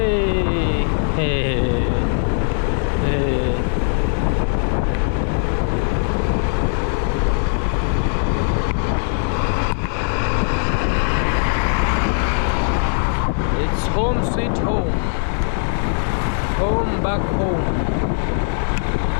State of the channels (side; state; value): right; silent; 63 dB below the other